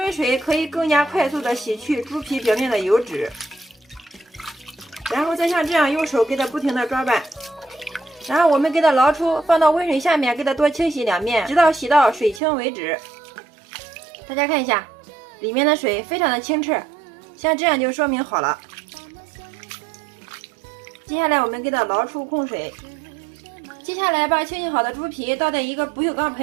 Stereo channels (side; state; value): left; drops out; at 12.4 s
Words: 水可以更加快速的洗去猪皮表面的油脂，然后再像这样用手给它不停的抓拌，然后我们给它捞出，放到温水下面给它多清洗2遍，直到洗到水清为止。大家看一下，里面的水非常的清澈，像这样就说明好了。接下来我们给它捞出控水，接下来把清洗好的猪皮倒在一个不锈钢